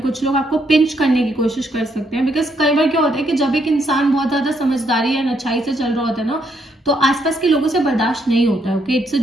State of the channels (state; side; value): normal; both; correlation 0.74